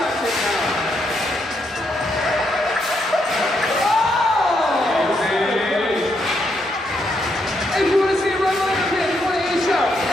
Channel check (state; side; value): normal; both; correlation 0.78